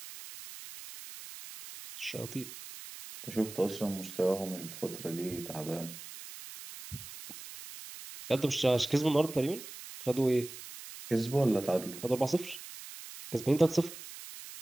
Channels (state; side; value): noise; right; hiss, 13 dB below the sound